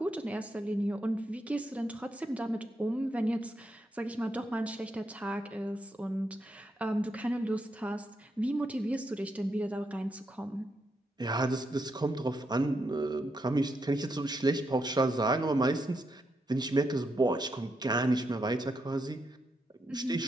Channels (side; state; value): both; normal; correlation 0.82